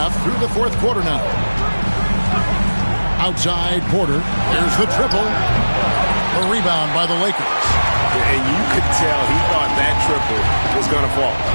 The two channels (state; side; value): inverted; both; correlation -1.00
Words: through the fourth quarter now. Outside Porter. There's the triple. A rebound by the Lakers. And you could tell he thought that triple was going to fall.